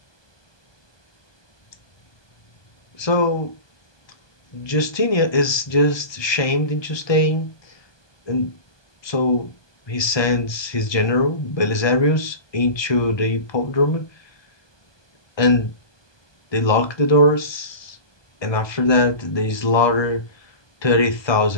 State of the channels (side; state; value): right; late; 1.2 ms